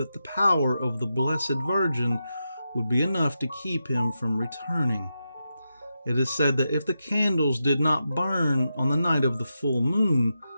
the power of the Blessed Virgin would be enough to keep him from returning. It is said that if the candles did not burn on the night of the full moon,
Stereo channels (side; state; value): both; inverted; correlation -0.88